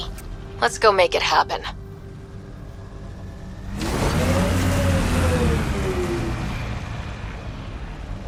Let's go make it happen.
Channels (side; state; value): both; identical; correlation 1.00